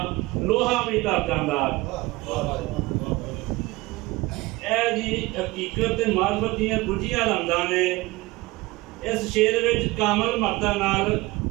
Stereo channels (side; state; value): left; quieter; 21.0 dB